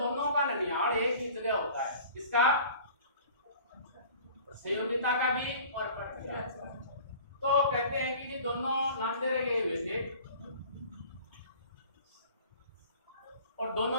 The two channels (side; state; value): both; inverted; correlation -0.45